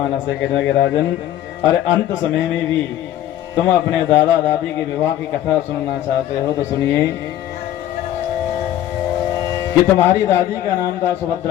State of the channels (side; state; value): right; quieter; 12.4 dB